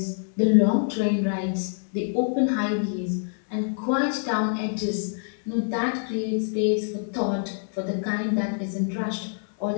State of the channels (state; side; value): silent; right; digital silence